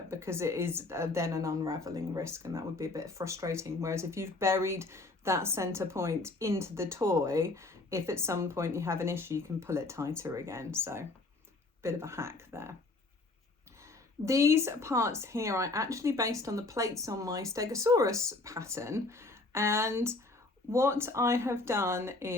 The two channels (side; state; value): right; quieter; 3.2 dB